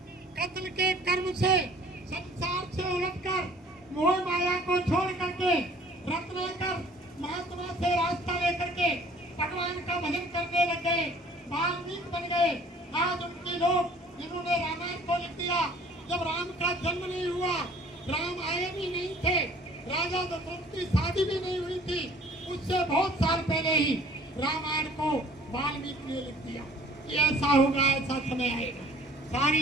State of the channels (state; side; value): normal; both; correlation 0.53